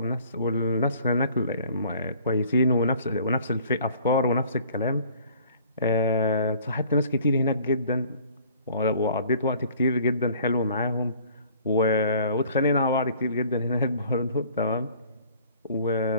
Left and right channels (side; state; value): both; inverted; correlation -0.54